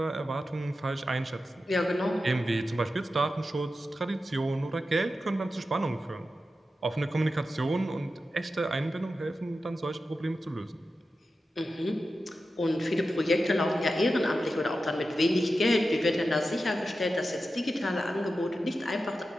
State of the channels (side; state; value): both; normal; correlation 0.91